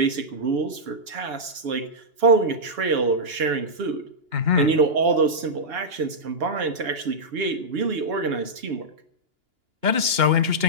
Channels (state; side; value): late; left; 2.9 ms